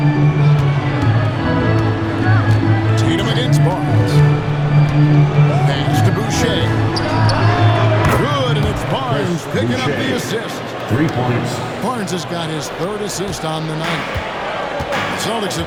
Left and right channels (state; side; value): identical; both; correlation 1.00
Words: Tatum against Barnes. Pass to Boucher. Good, and it's Barnes picking up the assist. 3 points. Barnes has got his 3rd assist on the night. The Celtics